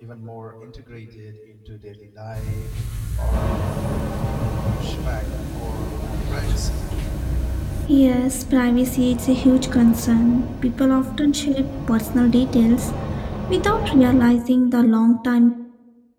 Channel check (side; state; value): both; identical; correlation 1.00